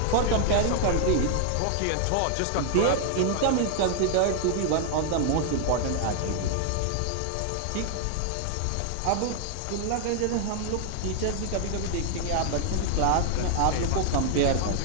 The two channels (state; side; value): different; both; correlation 0.00